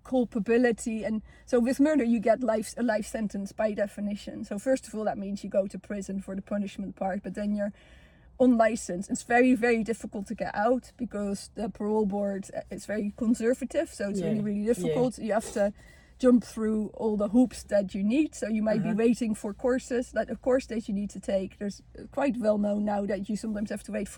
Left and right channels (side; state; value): both; identical; correlation 1.00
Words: culpability? And so with murder you get a life sentence by definition. So first of all, that means you go to prison for the punishment part, but then you're unlicensed. It's very, very difficult to get out because the parole board is very conservative, so it's really, really difficult. You have to jump through all the hoops that you need. So you might be waiting for courses, like a course that you need to take. There's quite well known now that you sometimes have to wait